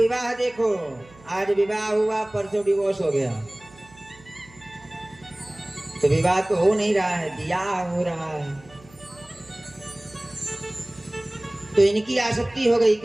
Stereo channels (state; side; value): noise; right; hum, 25 dB below the sound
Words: देखो, आज विवाह हुआ परसों डिवोर्स हो गया। तो विवाह तो हो नहीं रहा है, ब्याह हो रहा है। तो इनकी आसक्ति हो गई